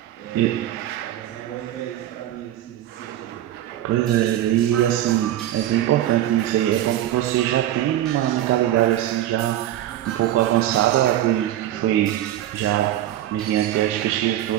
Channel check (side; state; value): left; quieter; 12.8 dB